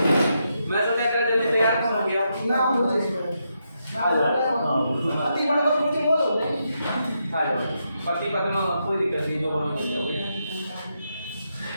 मैं सोचा कर जल्दी तैयार कौन हो गया? नाम बोलो इसमें। पति बड़े बड़े कोई बोलो। आ जाओ। पति पत्नी में कोई दिक्कत नहीं, जो बोलो बोलो।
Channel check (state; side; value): inverted; both; correlation -0.82